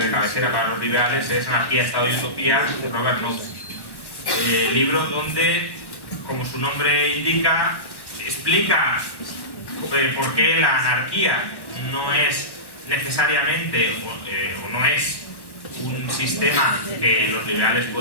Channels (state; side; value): late; right; 1.1 ms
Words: de cabecera para los liberales, es Anarquía, Estado y Utopía de Robert Nozick. Libro donde, como su nombre indica, explica por qué la anarquía no es necesariamente o no es un sistema que los liberales